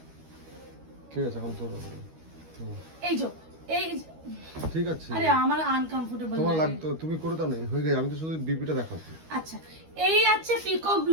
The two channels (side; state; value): left; late; 13 ms